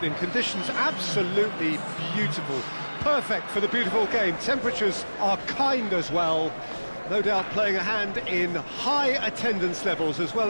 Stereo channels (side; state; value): both; inverted; correlation -1.00